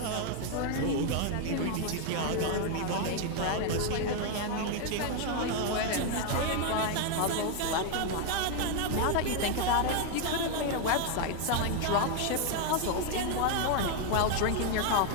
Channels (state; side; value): different; both; correlation 0.00